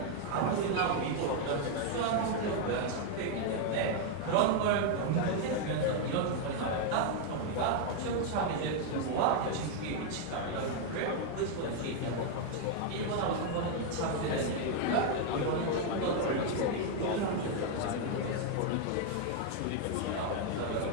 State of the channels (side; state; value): both; different; correlation 0.00